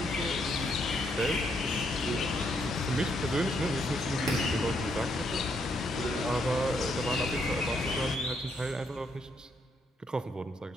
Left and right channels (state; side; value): normal; both; correlation 0.75